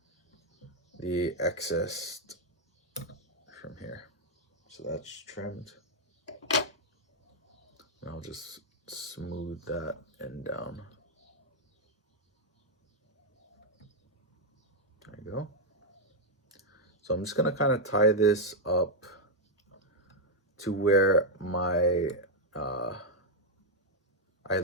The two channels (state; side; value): normal; both; correlation -0.01